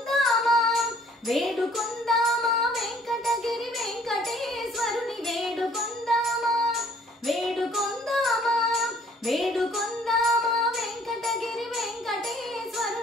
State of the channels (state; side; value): normal; both; correlation 0.59